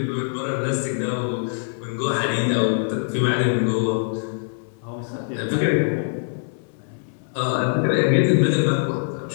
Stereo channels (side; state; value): right; silent; 63 dB below the other